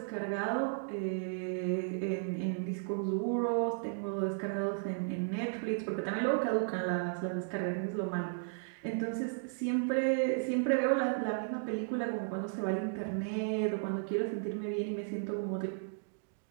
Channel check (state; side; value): silent; left; digital silence